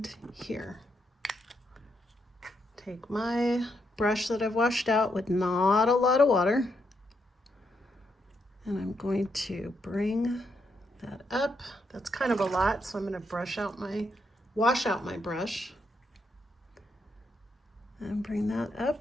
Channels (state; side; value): normal; both; correlation 0.79